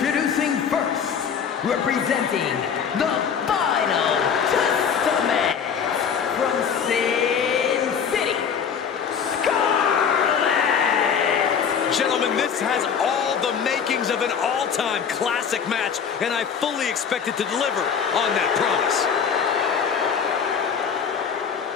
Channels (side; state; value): right; quieter; 7.1 dB